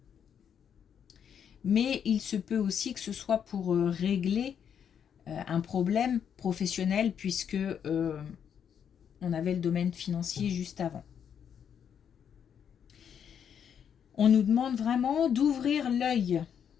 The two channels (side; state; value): right; quieter; 8.1 dB